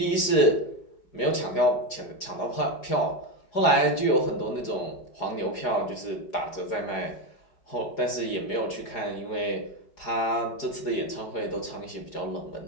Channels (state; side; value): late; right; 4.9 ms